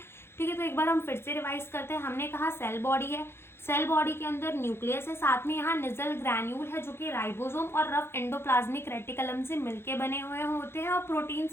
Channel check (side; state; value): right; late; 0.12 ms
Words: ठीक है, तो एक बार हम फिर से रिवाइज करते हैं। हमने कहा सेल बॉडी है, सेल बॉडी के अंदर न्यूक्लियस है, साथ में यहाँ निजल ग्रैन्यूल है जो कि राइबोसोम और रफ एंडोप्लाज्मिक रेटिकुलम से मिलके बने हुए होते हैं और प्रोटीन